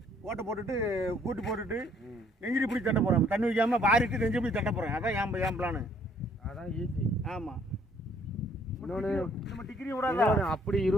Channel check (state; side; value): normal; both; correlation 0.63